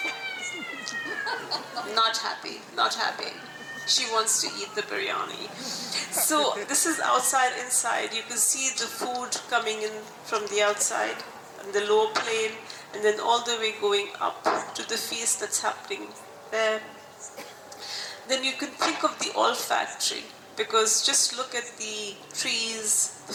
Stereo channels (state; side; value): identical; both; correlation 1.00